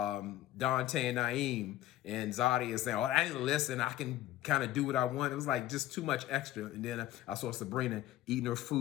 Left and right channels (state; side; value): quieter; right; 14.4 dB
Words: and Naeem, and Zadi is saying, "Oh, I didn't listen. I can kind of do what I want." It was like just too much extra. And then I saw Sabrina eating her